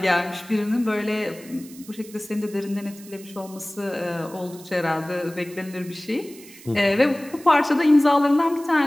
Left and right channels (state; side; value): noise; right; hiss, 20 dB below the sound